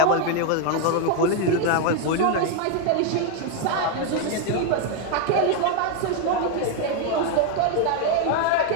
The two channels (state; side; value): different; both; correlation 0.01